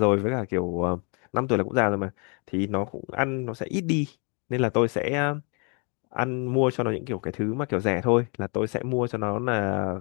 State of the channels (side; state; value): right; quieter; 35.3 dB